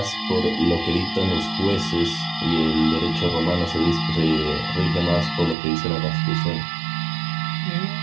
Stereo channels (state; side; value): drops out; left; at 5.6 s